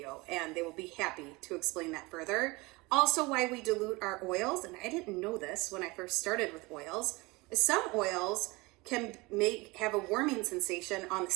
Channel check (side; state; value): left; quieter; 23.7 dB